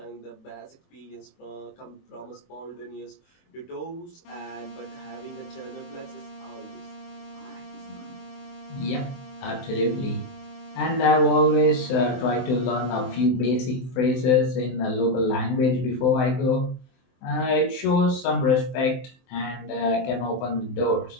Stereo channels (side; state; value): right; late; 24 ms